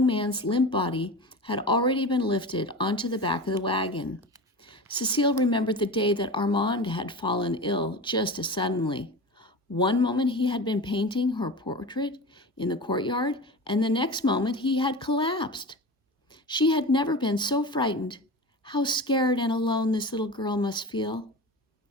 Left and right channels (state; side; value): normal; both; correlation 0.30